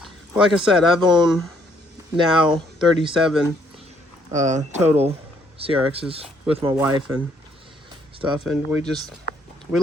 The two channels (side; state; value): both; normal; correlation 0.68